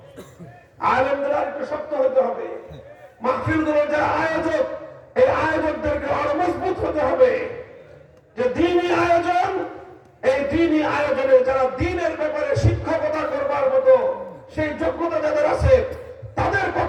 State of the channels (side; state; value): both; identical; correlation 1.00